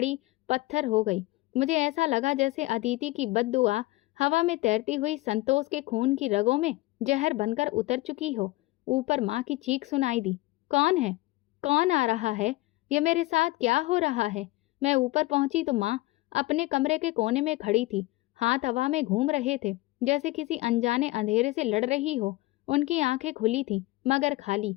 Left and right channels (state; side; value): quieter; right; 20.0 dB